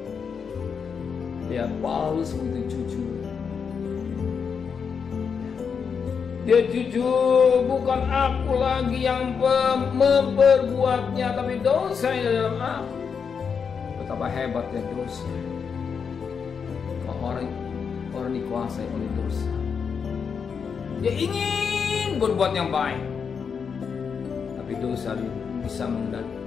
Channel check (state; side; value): quieter; right; 6.3 dB